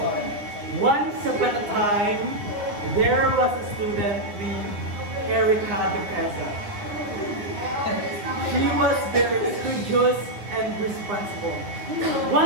once upon a time, there was a student named Erica Duquesa. She was very studious and responsible.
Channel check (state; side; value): late; left; 9.8 ms